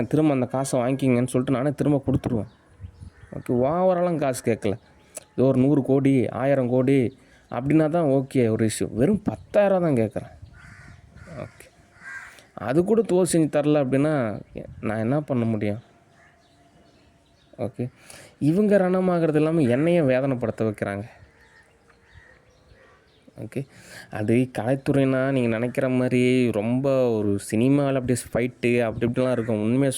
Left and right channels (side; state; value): both; identical; correlation 1.00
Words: திரும்ப அந்த காசை வாங்கிக்கிங்கன்னு சொல்லிட்டு நானே திரும்ப கொடுத்துருவேன். ஓகே, ஓவராலாம் காசு கேட்கல. ஏதோ ஒரு 100 கோடி 1000 கோடி அப்படின்னா தான் ஓகே ஒரு இஷ்யூ. வெறும் 10,000 தான் கேட்குறேன். ஓகே, அது கூட செஞ்சு தரல அப்படின்னா நான் என்ன பண்ண முடியும்? ஓகே, இவங்க ரணமாகிறது இல்லாமல் என்னையும் வேதனைப்படுத்த வைக்கிறாங்க. ஓகே, அது கலைத்துறைனா நீங்கள் நினைக்கிற மாதிரி ரொம்ப ஒரு சினிமாவில் அப்படியே ஃபைட்டு அப்படி இப்படிலாம் இருக்கும். உண்மையை